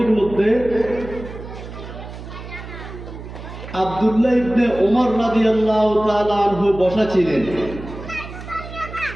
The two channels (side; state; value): right; noise; hum, 12 dB below the sound